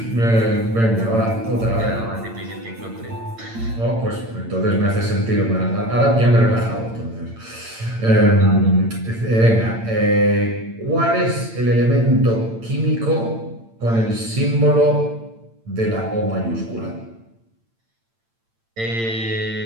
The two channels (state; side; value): late; left; 8.8 ms